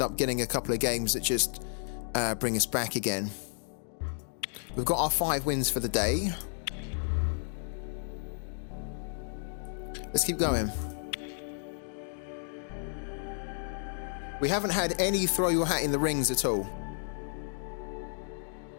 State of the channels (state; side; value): silent; right; digital silence